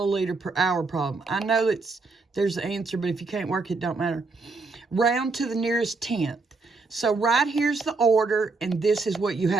per hour problem. I know there's the answer, but if you can't work it, don't matter. Round to the nearest tenth. So right here's the order, and this is what you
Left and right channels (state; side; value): quieter; left; 3.9 dB